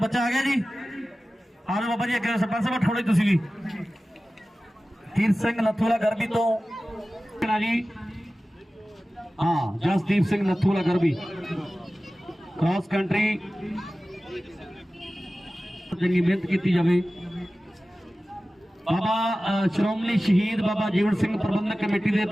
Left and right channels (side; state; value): both; normal; correlation 0.96